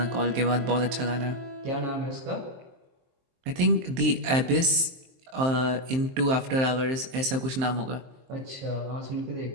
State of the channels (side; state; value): left; late; 23 ms